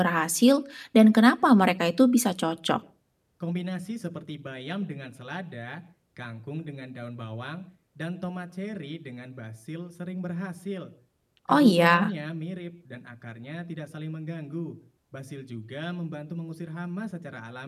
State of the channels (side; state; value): both; identical; correlation 1.00